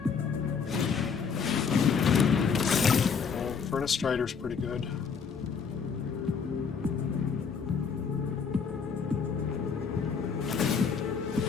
Furnace Strider's pretty good.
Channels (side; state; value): right; quieter; 6.0 dB